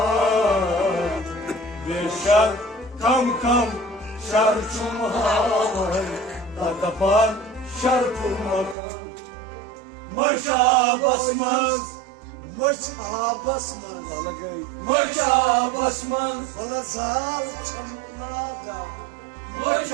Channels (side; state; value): left; drops out; at 8.8 s